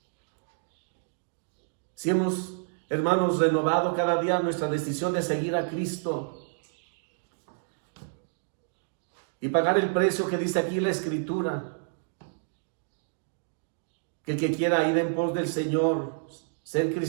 Si hemos, hermanos, renovado cada día nuestra decisión de seguir a Cristo y pagar el precio que dice aquí la Escritura, que el que quiera ir en pos del Señor, ser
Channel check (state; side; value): silent; left; digital silence